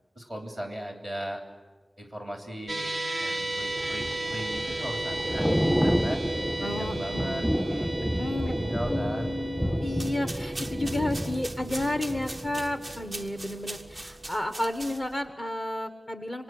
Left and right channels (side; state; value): both; normal; correlation 0.97